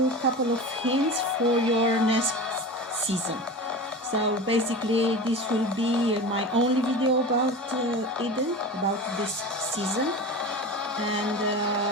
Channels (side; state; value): both; normal; correlation 0.31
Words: a couple of hints for your next season. So basically this will be my only video about Eden, about this season, and